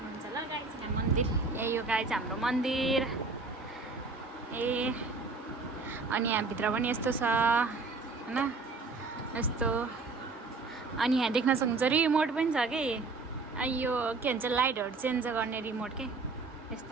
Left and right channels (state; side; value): quieter; left; 4.0 dB